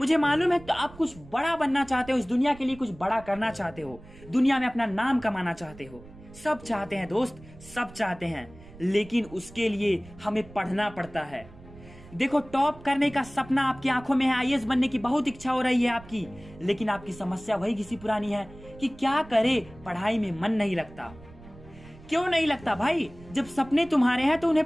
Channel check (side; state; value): right; noise; rumble, 20 dB below the sound